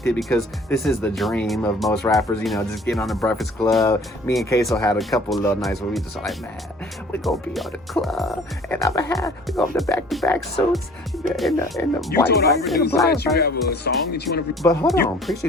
it, because this is the dream of most rappers, just getting on the Breakfast Club. Me and Queso had a couple of little nights where we just like, man, we're gonna be on the club, and we're gonna have the back-to-back suits, in the you white told our producer that you have a song that you want to. But hold on,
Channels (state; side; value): normal; both; correlation 0.51